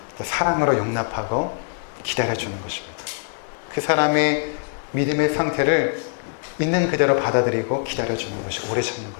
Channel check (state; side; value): silent; right; digital silence